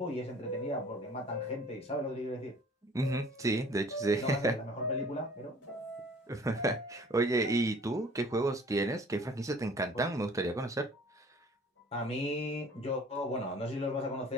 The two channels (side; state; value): both; normal; correlation 0.51